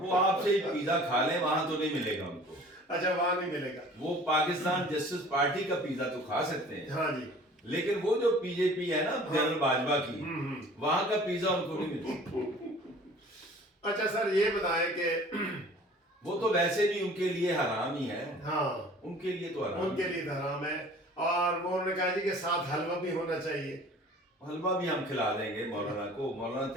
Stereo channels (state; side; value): normal; both; correlation 0.48